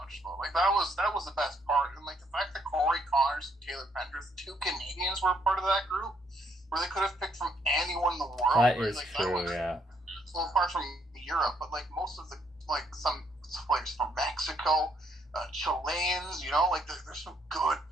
though. Like that was the best part, and like the fact that Corey Connors and Taylor Pendrith, two Canadians, were part of that group, where they could have picked from anyone in the world. That right? is Like, true, yeah. Well, apart from Europe, but like most of the some players from Mexico, Chileans, like there's some good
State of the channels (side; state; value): both; normal; correlation 0.71